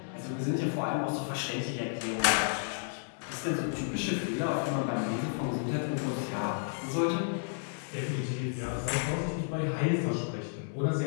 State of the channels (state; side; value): silent; right; digital silence